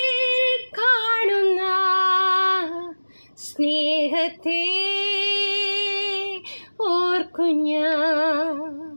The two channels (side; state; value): both; inverted; correlation -1.00